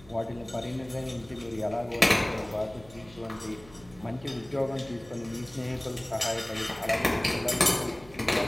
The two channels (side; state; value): right; noise; hum, 22 dB below the sound